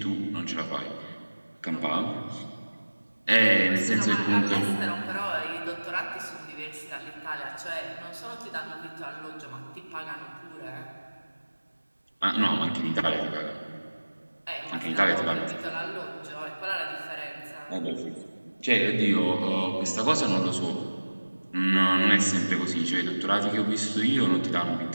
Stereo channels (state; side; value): inverted; both; correlation -1.00